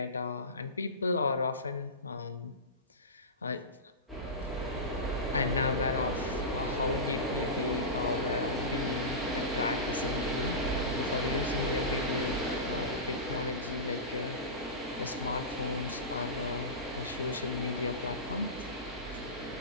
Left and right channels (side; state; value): both; normal; correlation -0.20